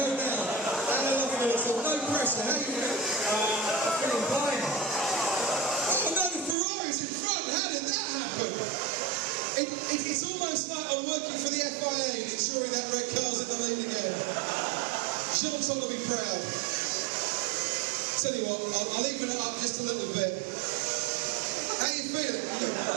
all. No pressure. How you going? I'm feeling blind. Oh no, the Ferrari's in front. How did that happen? It's almost like I'm working for the FIA and ensuring that red car's in the lead again. Sean's going to be proud. Tell you what, I'll even it up just a little bit. How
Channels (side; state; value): left; drops out; at 6.6 s